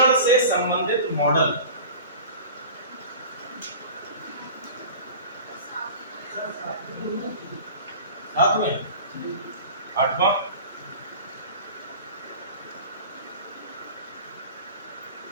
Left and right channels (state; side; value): inverted; both; correlation -0.37